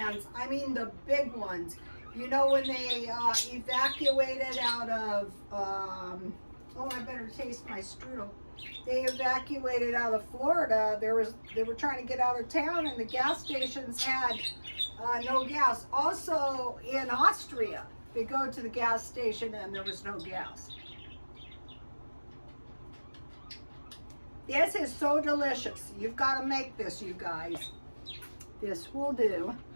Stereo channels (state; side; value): inverted; both; correlation -1.00